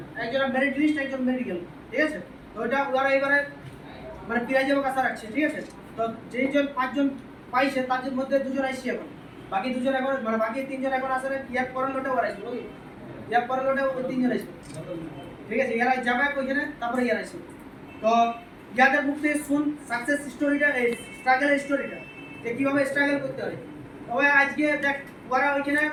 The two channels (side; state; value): both; identical; correlation 1.00